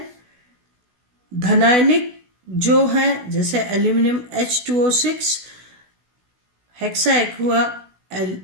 धनायनिक जो है जैसे aluminium H2O6, hexa aqua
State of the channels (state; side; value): late; left; 16 ms